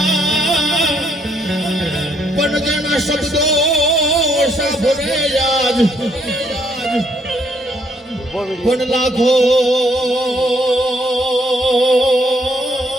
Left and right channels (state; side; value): normal; both; correlation 0.70